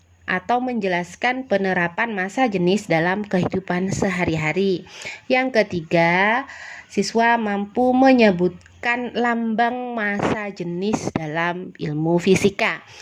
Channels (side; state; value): both; identical; correlation 1.00